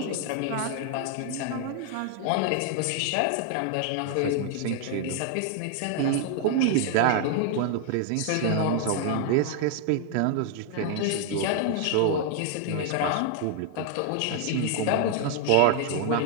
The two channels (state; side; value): different; both; correlation 0.00